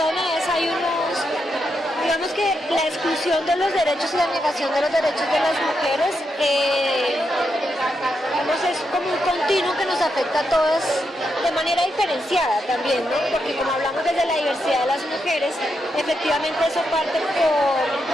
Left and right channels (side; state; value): both; normal; correlation 0.83